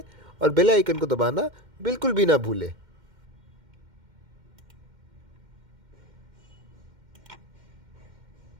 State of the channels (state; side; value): late; left; 2.1 ms